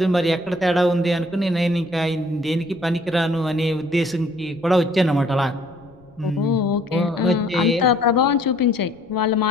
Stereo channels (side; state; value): left; noise; rumble, 29 dB below the sound